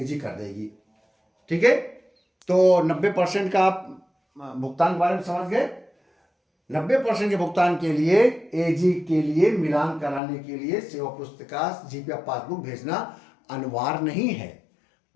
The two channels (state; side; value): drops out; right; at 10.2 s